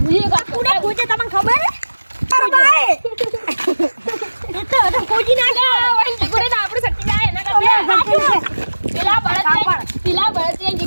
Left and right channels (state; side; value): inverted; both; correlation -1.00